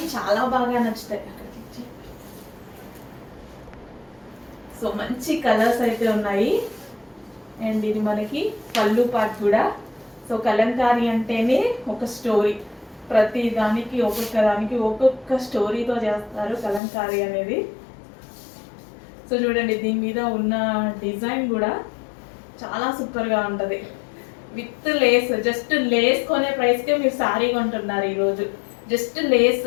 చాలా బాగా నచ్చుతాయి. సో మంచి కలర్స్ అయితే ఉన్నాయి. అండ్ ఇది మనకి పళ్ళు పార్ట్ కూడా. సో కలంకారీ అంటేనే ఒక స్టోరీ, ప్రతి దానికి ఒక్కొక్క దానికి ఒక్కొక్క స్టోరీతో చేస్తారు కలంకారీ అనేది. సో చూడండి, దీని మీద ఉన్న డిజైన్ కూడా చాలా సూపర్గా ఉంటుంది. విత్ లేస్, జస్ట్ లేస్ కొనే ప్రైస్కే మీరు శారీ కొంటున్నారు ఈరోజు. జస్ట్ లేస్,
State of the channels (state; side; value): drops out; right; at 16.8 s